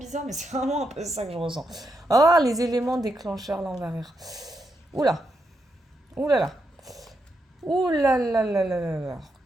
mais c'est vraiment un peu ça que je ressens. Oh, les éléments déclencheurs, là, on va rire. Oula, oulala, oulala.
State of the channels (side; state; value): both; normal; correlation 0.82